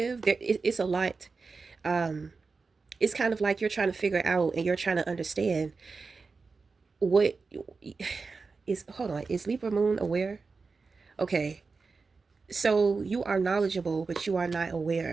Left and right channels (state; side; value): quieter; left; 4.4 dB